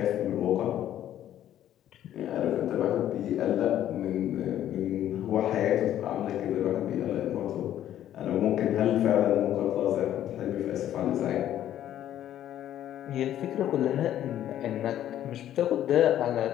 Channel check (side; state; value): right; quieter; 11.7 dB